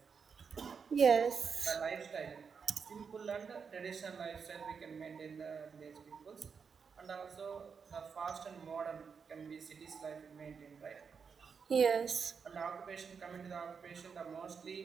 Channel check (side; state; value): left; quieter; 6.0 dB